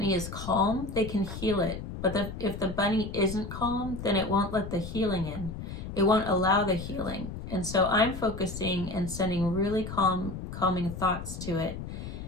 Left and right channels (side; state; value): left; noise; rumble, 8 dB below the sound